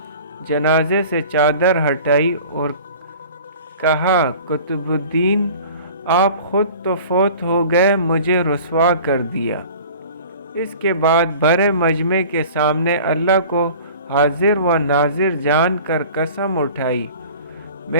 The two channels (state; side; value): inverted; both; correlation -0.43